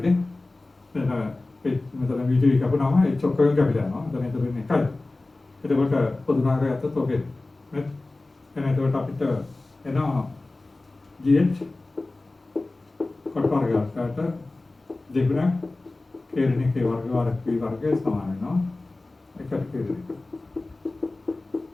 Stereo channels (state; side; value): quieter; right; 3.1 dB